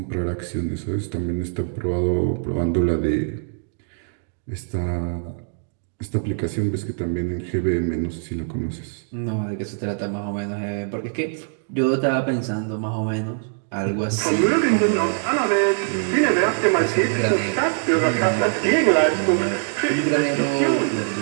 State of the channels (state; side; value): silent; left; digital silence